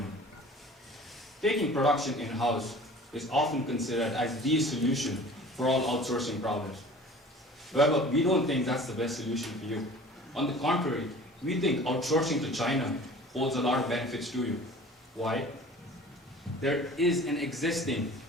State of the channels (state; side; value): normal; both; correlation 0.44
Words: Taking production in-house is often considered as the solution for all outsourcing problems. However, we don't think that's the best solution for you. On the contrary, we think outsourcing to China holds a lot of benefits to you. Why? There is an existing